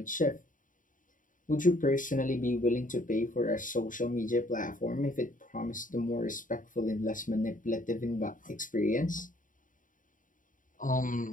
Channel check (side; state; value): right; late; 0.38 ms